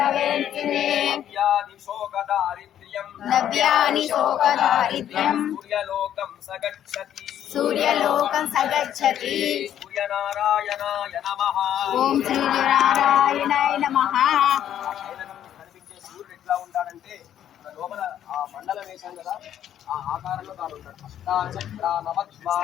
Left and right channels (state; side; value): quieter; right; 10.6 dB